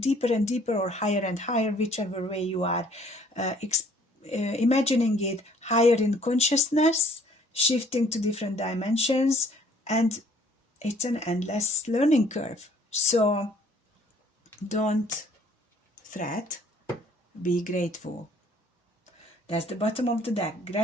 and deeper, or higher and higher, whichever way you are imagining it, higher in consciousness, shifting to different dimensions, and it's an endless learning curve. So don't fret, be grateful. That's the bottom of the deck.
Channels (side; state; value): both; normal; correlation 0.59